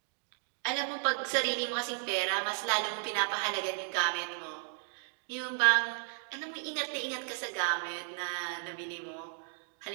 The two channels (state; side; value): silent; left; digital silence